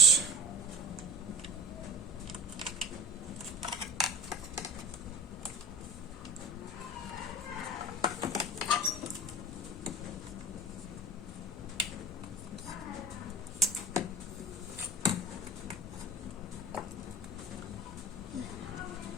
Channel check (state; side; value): normal; both; correlation 0.39